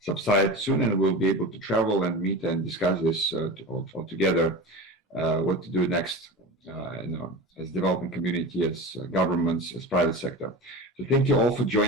soon, and we'll be able to travel and meet and discuss this all together, what to do next, as developing community, as governments, as private sector. So thank you all for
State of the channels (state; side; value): normal; both; correlation 0.28